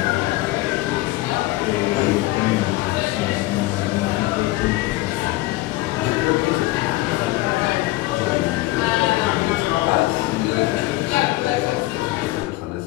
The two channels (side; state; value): right; quieter; 19.0 dB